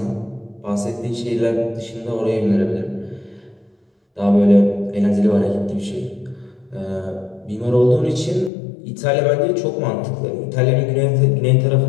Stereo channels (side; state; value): right; drops out; at 8.5 s